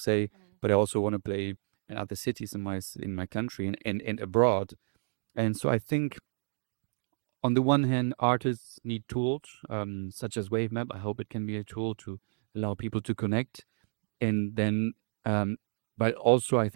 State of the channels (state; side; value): silent; left; digital silence